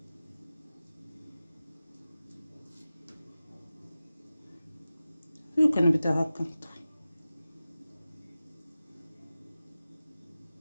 وكنبدا هكا نطوي.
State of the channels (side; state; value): both; inverted; correlation -0.95